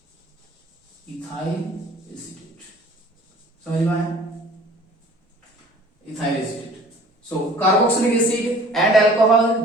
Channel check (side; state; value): both; normal; correlation 0.50